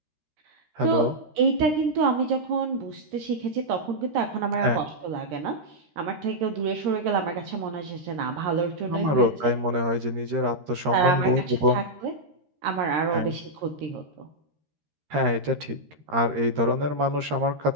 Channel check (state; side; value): late; left; 13 ms